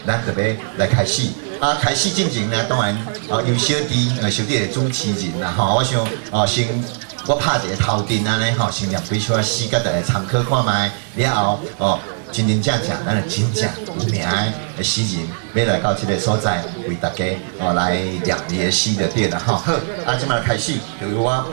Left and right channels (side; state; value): left; silent; 64 dB below the other